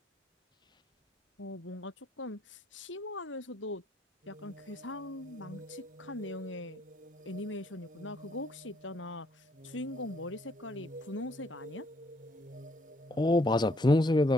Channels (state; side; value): normal; both; correlation 0.69